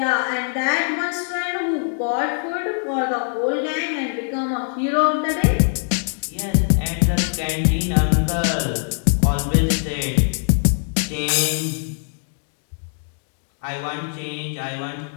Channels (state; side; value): silent; right; 64 dB below the other